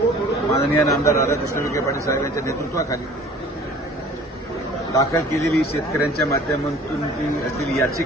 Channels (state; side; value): normal; both; correlation 0.48